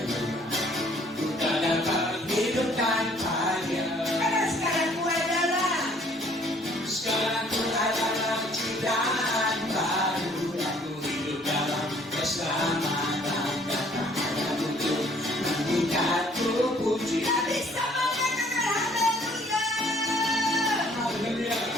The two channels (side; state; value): both; normal; correlation 0.59